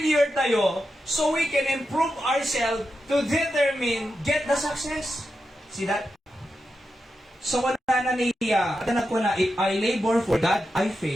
tayo, so we can improve ourselves to determine, get the success. See that? So, wala na niya. Atanap ko na, if I labor for God, I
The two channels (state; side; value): normal; both; correlation 0.88